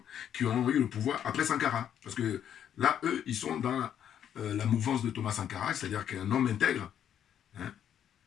qui ont eu le pouvoir après Sankara. Parce que là, eux, ils sont dans la mouvance de Thomas Sankara, c'est-à-dire qu'un homme intègre, hein,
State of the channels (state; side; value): quieter; right; 9.6 dB